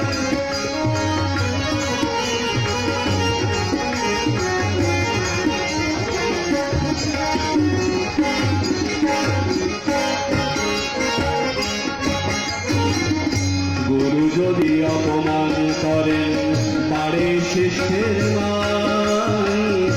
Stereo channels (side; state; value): both; identical; correlation 1.00